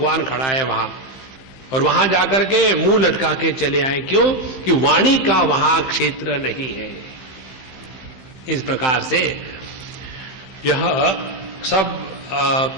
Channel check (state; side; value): late; right; 15 ms